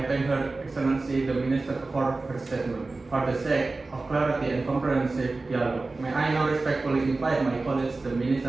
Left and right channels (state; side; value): quieter; left; 3.5 dB